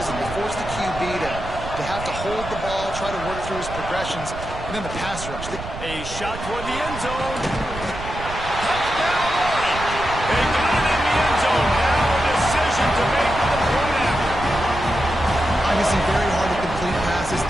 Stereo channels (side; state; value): right; noise; rumble, 10 dB below the sound